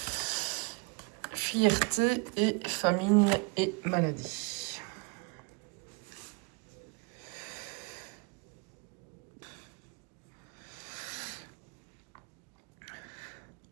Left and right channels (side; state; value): left; quieter; 29.6 dB